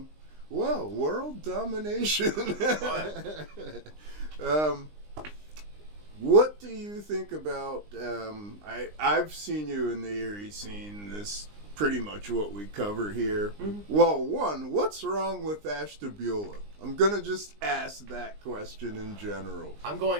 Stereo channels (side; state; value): left; late; 20 ms